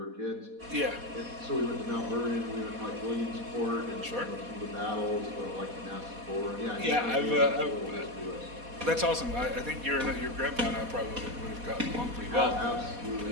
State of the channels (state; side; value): late; left; 4.1 ms